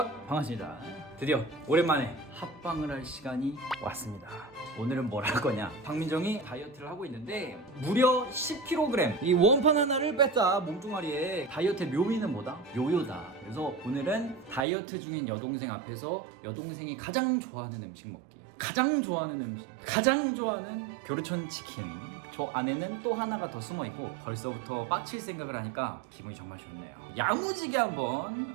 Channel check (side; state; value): left; drops out; at 14.7 s